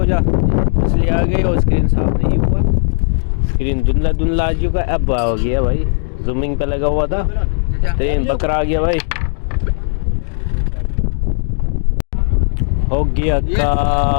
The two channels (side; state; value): right; silent; digital silence